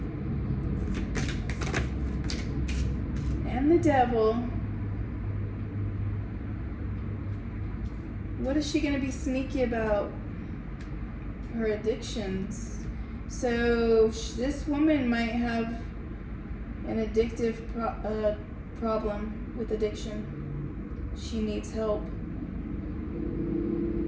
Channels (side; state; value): both; identical; correlation 1.00